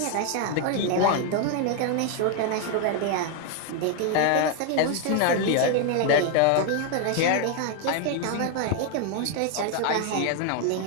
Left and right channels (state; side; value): different; both; correlation 0.01